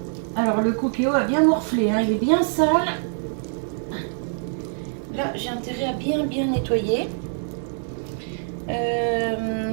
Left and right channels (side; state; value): left; silent; digital silence